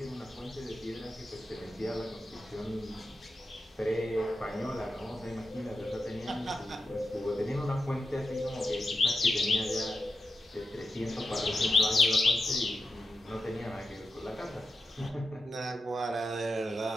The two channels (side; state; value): both; normal; correlation 0.89